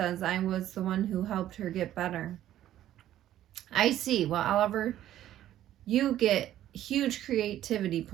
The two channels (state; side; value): quieter; left; 12.6 dB